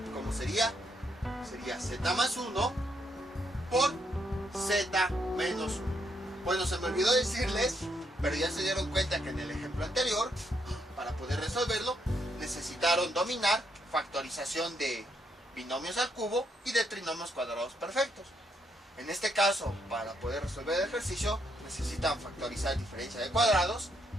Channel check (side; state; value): both; normal; correlation 0.76